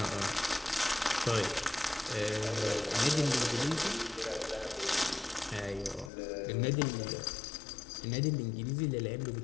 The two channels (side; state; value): right; drops out; at 6.1 s